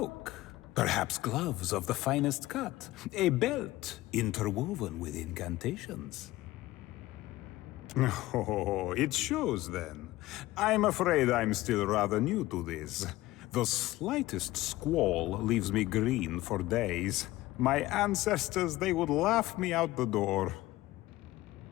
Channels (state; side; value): quieter; right; 17.5 dB